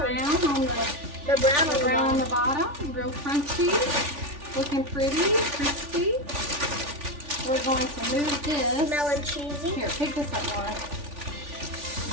on the brown on the bottom. Real crunchy. Looking pretty, crispy. We're going to move this. Smelling cheesy. Here, pick this up, Laura.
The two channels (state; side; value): late; left; 3.4 ms